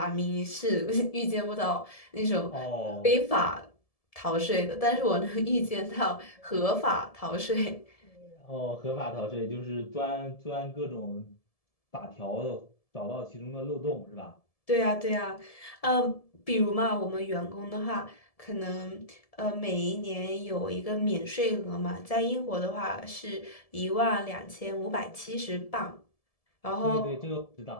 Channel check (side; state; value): right; late; 1.7 ms